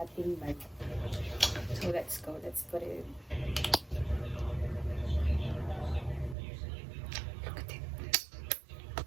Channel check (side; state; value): left; drops out; at 6.4 s